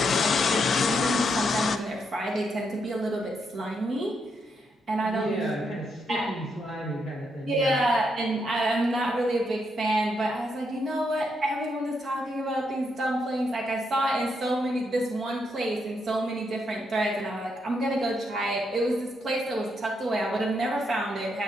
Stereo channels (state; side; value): normal; both; correlation 0.79